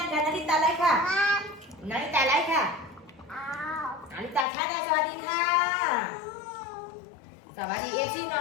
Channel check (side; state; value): right; drops out; at 4.5 s